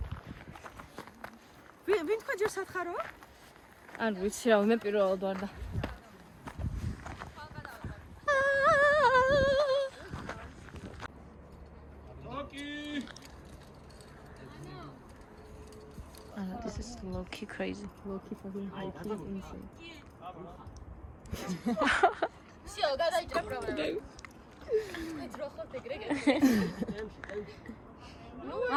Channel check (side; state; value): both; identical; correlation 1.00